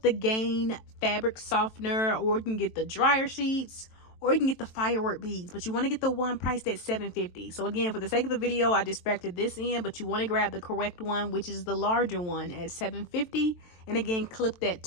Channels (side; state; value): right; late; 23 ms